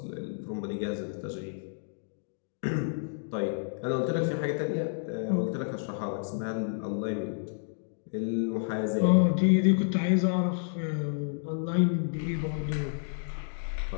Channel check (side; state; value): right; silent; digital silence